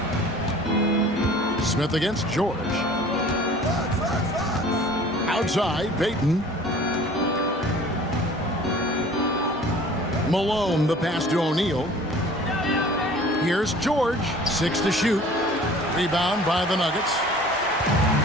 Smith against George. Outside, Payton. Malone, the pass to O'Neal. Here's George, 6 to shoot. Rebound by the Nuggets.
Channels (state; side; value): normal; both; correlation 0.47